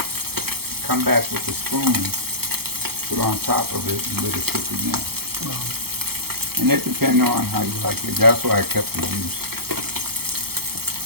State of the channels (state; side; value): late; left; 0.95 ms